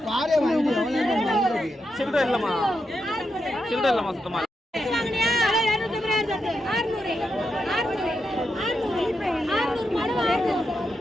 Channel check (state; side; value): normal; both; correlation 0.85